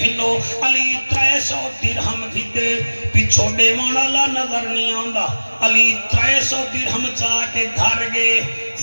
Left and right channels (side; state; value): both; inverted; correlation -1.00